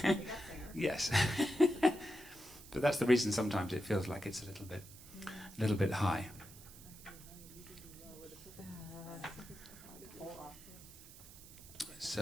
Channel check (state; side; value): noise; right; hiss, 18 dB below the sound